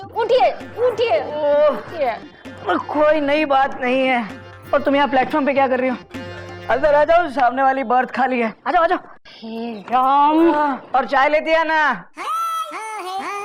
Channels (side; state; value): both; identical; correlation 1.00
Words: उठिए उठिए उठिए। कोई नई बात नहीं है। और तुम यहाँ प्लेटफॉर्म पे क्या कर रही हो? अंदर आ जाओ, सामने वाली बर्थ खाली है। आ जाओ आ जाओ। हे राम। और चाय लेती है ना?